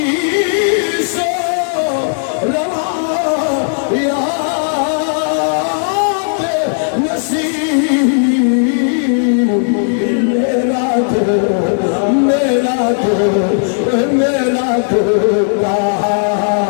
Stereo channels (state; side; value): silent; right; digital silence